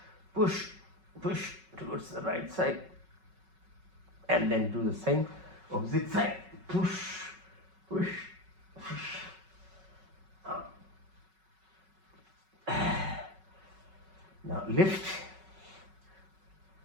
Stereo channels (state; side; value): late; left; 5.3 ms